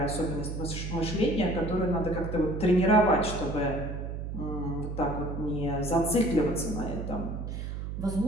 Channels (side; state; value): right; noise; hum, 5 dB below the sound